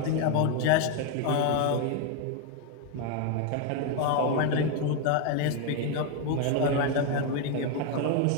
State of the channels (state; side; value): different; both; correlation 0.01